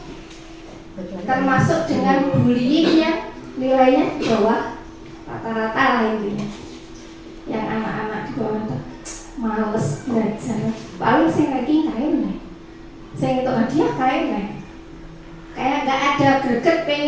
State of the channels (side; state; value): both; identical; correlation 1.00